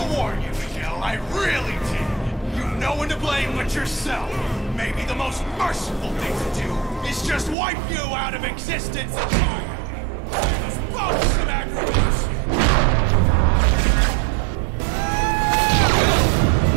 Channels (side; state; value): left; drops out; at 7.6 s